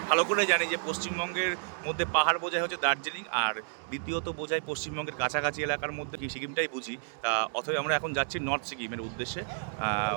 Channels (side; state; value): left; silent; digital silence